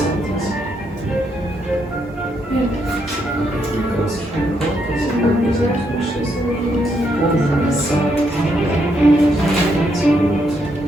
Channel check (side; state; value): both; normal; correlation 0.77